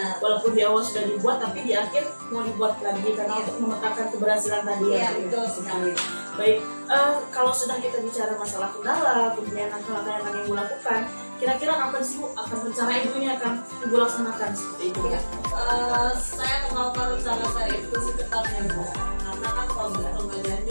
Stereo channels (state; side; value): inverted; both; correlation -1.00